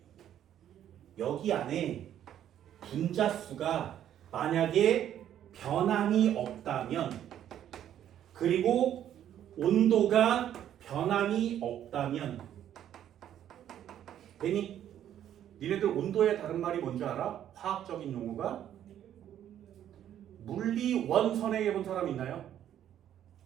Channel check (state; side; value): quieter; left; 10.7 dB